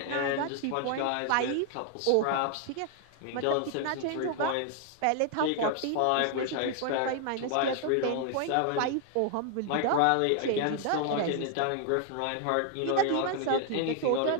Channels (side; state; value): both; different; correlation 0.00